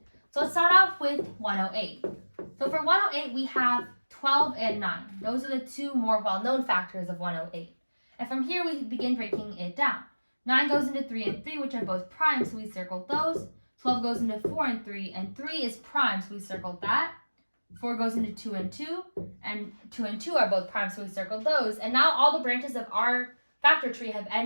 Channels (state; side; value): inverted; both; correlation -1.00